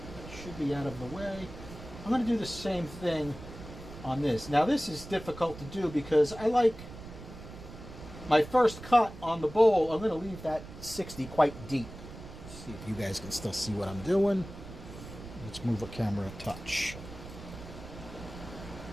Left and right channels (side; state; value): right; noise; rumble, 14 dB below the sound